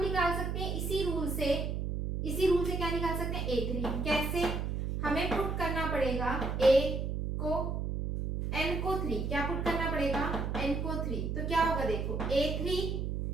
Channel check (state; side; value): noise; right; hum, 2 dB below the sound